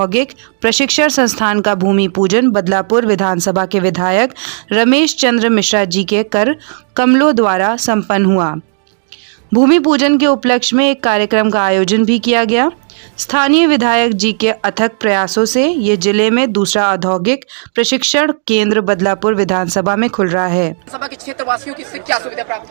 प्रशिक्षण संस्थान का भूमि पूजन बदलापुर विधानसभा के विधायक रमेश चंद्र मिश्रा जी के कर कमलों द्वारा संपन्न हुआ। भूमि पूजन के उपलक्ष्य में एक कार्यक्रम का आयोजन भी किया गया। स्थानीय विधायक जी के अथक प्रयासों से ये जिले में दूसरा औद्योगिक प्रशिक्षण केंद्र बदलापुर विधानसभा में खुल रहा है। सभा के क्षेत्रवासियों की इससे क्या सुविधा प्राप्त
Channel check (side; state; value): left; silent; digital silence